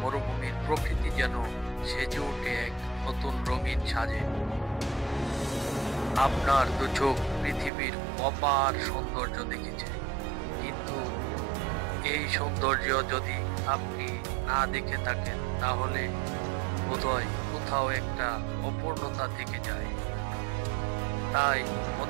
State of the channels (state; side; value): drops out; left; at 7.7 s